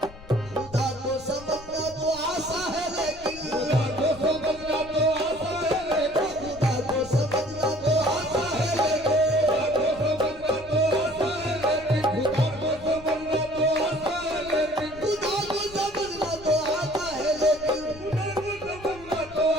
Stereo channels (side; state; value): left; noise; rumble, 18 dB below the sound